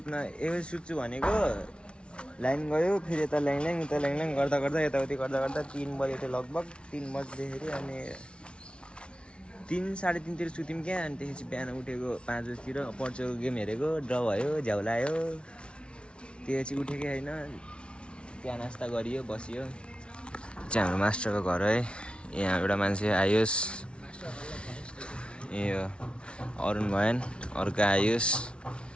सुत्छु भनेको लाइन गयो, फेरि यता ल्याङ उता ल्याङ गर्दा यताउति गर्दा 3 बजे थियो लगभग। 3 बज्दाखेरि अनि 3 साढे 3तिर सुत्यौँ क्या। अनि त्यसपछि बिहान उठेको 5 बजीतिर, पोर्चुगल गेम हेरेको, ड्र भयो, झ्याउलायो। त्यसपछि उठेकै होइन, त्यहाँ नास्ता गरियो, बसियो। चाहिँ हाम्रो मास्टरको घर है, यहाँ एउटा मान्छे आयोस्, यो अरुण भएन, अर्को आयुष,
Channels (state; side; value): late; right; 0.058 ms